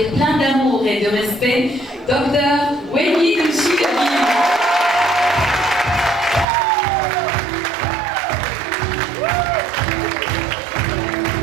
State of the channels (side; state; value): left; drops out; at 6.5 s